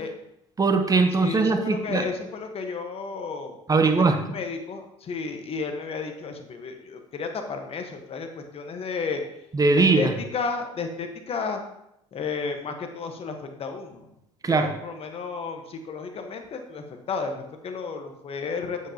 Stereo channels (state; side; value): normal; both; correlation 0.54